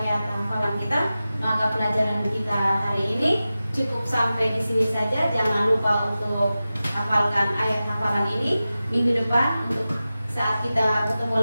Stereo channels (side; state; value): both; inverted; correlation -0.94